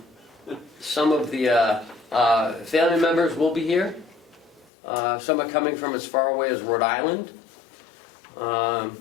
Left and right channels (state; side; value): drops out; right; at 4.7 s